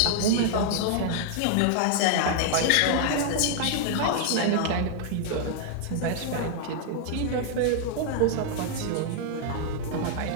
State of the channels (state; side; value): different; both; correlation 0.00